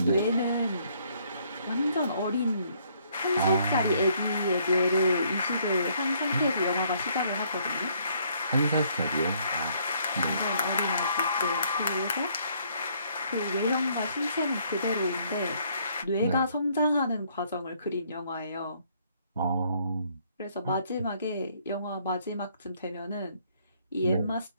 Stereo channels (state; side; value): inverted; both; correlation -0.66